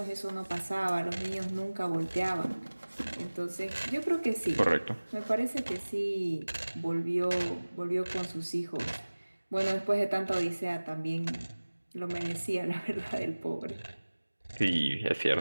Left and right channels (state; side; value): inverted; both; correlation -1.00